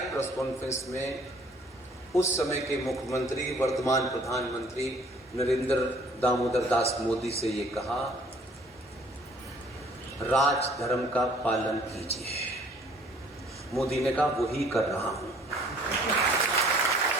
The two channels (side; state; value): both; normal; correlation 0.56